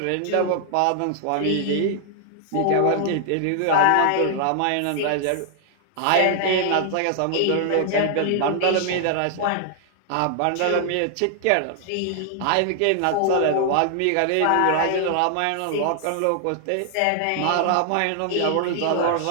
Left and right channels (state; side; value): different; both; correlation 0.00